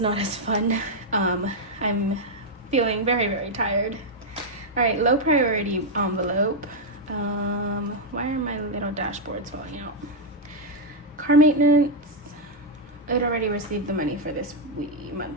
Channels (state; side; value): normal; both; correlation -0.02